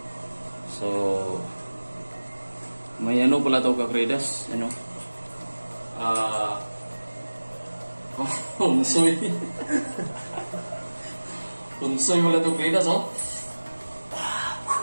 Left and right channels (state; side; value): inverted; both; correlation -1.00